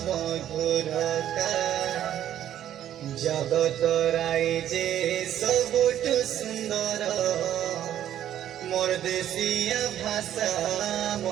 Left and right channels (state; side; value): quieter; left; 11.2 dB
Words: মধুরতা জগত রাই যে সবুঠু সুন্দর মোর দেশিয়া ভাষা